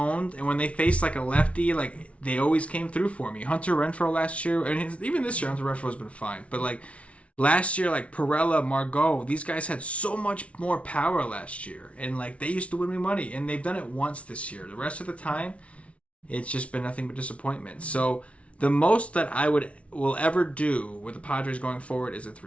and when they faced like a lefty, like they always came through for me. Hunter Renfroe last year, and even this year, Hunter Renfroe has been fine. But like last year, like Perella, Margot, these guys had so much more power last year, and like they used to win me money, and they've done it once this year. The rest of the time, it's just been nothing but disappointment. So the most that I will ever do with the Padres going forward is a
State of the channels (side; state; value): right; late; 0.063 ms